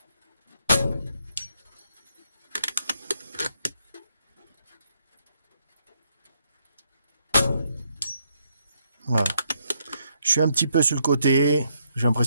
Voilà. Je suis un petit peu sur le côté. J'ai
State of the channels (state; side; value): inverted; both; correlation -0.76